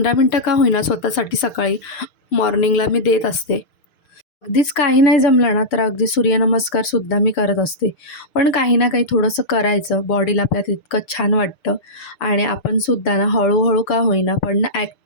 मिनटं का होईना स्वतःसाठी सकाळी मॉर्निंगला मी देत असते. अगदीच काही नाही जमलं ना, तर अगदी सूर्यनमस्कारसुद्धा मी करत असते. पण काही ना काही थोडंसं करायचं, बॉडीला आपल्या तितकं छान वाटतं आणि आपण सुद्धा ना हळूहळू का होईना पण ना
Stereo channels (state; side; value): late; right; 6.7 ms